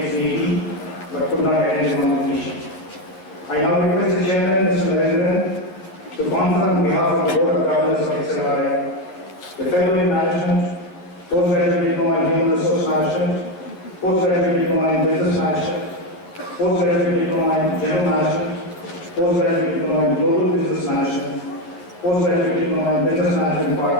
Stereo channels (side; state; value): right; late; 11 ms